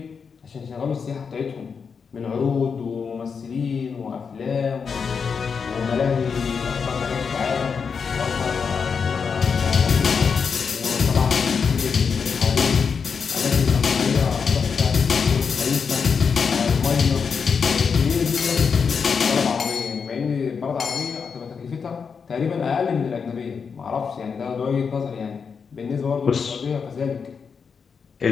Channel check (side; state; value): right; quieter; 5.9 dB